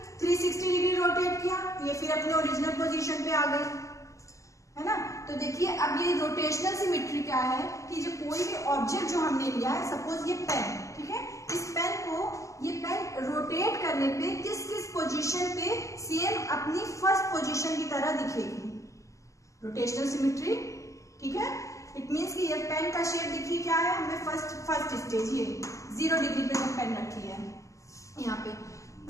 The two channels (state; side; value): late; right; 0.16 ms